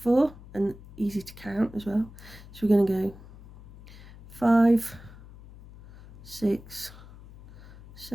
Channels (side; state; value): left; noise; hum, 19 dB below the sound